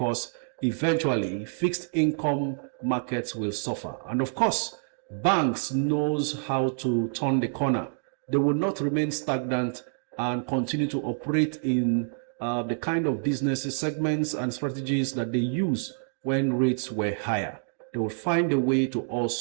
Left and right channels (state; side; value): silent; left; digital silence